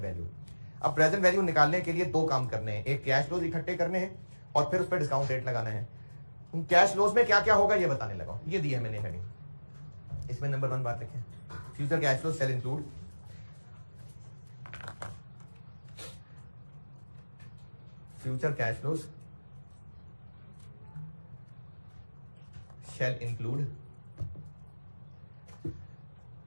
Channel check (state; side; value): inverted; both; correlation -1.00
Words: वैल्यू। अब प्रेजेंट वैल्यू निकालने के लिए 2 काम करने हैं, एक कैश फ्लोज इकट्ठे करने हैं और फिर उस पर डिस्काउंट रेट लगाना है। कैश फ्लोज में क्या क्या होगा ये बताने लगा, ये दिया है मैंने हेडिंग। इसमें नंबर 1 बात लिखें, future cash flow sale include future cash flows shall include,